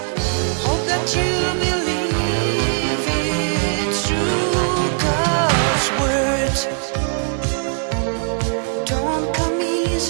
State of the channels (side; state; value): left; silent; 66 dB below the other